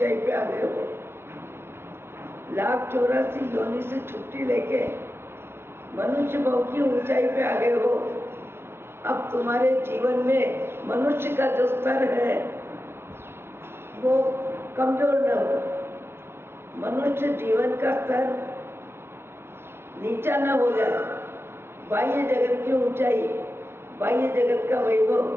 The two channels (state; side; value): late; left; 0.12 ms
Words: पे आ गए हो। 1,84 योनि से छुट्टी लेके मनुष्य भाव की ऊंचाई पे आ गए हो। अब तुम्हारे जीवन में मनुष्य का जो स्तर है वो कमजोर न हो। मनुष्य जीवन का स्तर नीचा न हो जाए। बाह्य जगत की ऊंचाई, बाह्य जगत का वैभव,